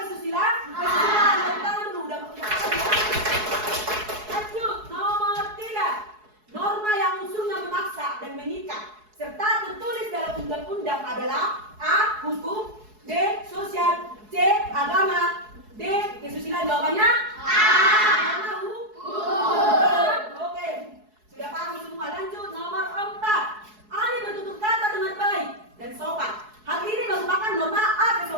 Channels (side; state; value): left; late; 4.7 ms